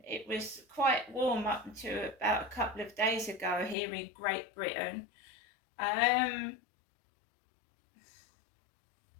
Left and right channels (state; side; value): drops out; right; at 3.8 s